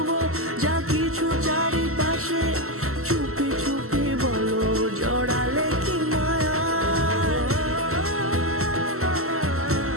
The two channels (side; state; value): left; late; 0.63 ms